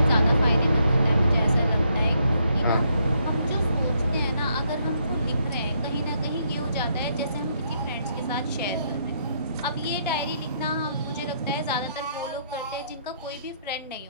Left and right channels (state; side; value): inverted; both; correlation -0.74